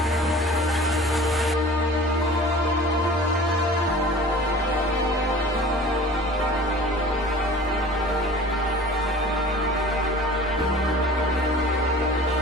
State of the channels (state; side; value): normal; both; correlation 0.43